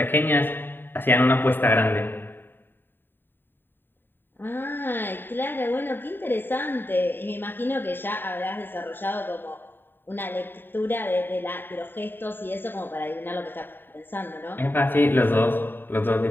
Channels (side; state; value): right; late; 0.096 ms